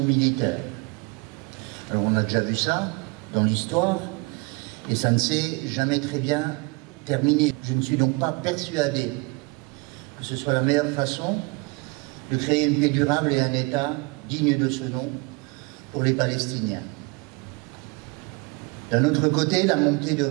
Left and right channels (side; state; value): left; quieter; 27.6 dB